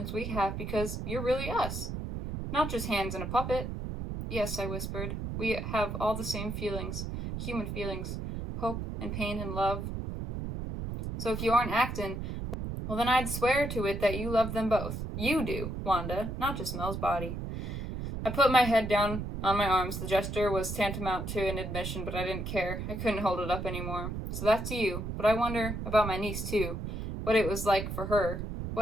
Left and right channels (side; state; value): right; noise; rumble, 5 dB below the sound